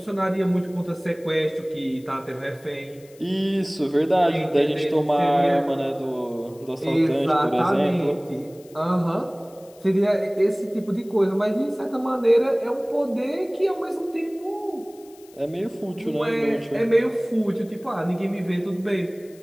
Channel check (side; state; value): left; noise; hiss, 26 dB below the sound